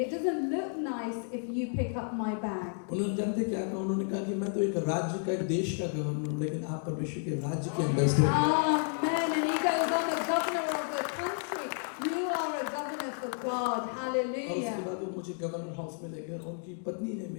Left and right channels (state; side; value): silent; right; 57 dB below the other